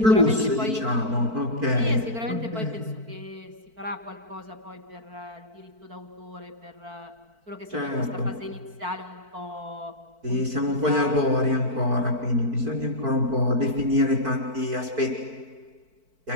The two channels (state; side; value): late; left; 4.5 ms